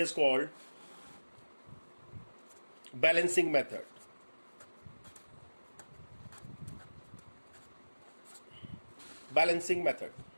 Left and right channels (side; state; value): both; inverted; correlation -1.00